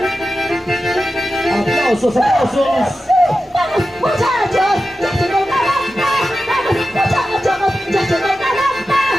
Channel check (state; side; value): normal; both; correlation 0.92